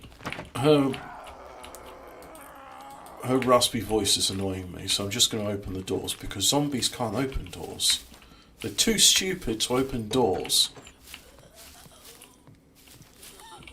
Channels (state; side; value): identical; both; correlation 1.00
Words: her raspy voice is annoying me, so I'm just going to open the doors because zombies can't open doors. They're too stupid to open doors.